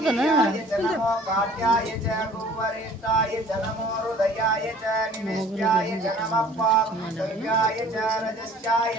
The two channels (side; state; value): both; normal; correlation 0.51